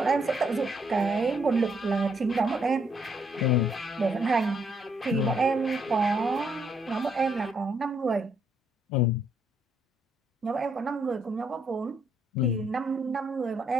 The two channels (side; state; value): both; normal; correlation 0.72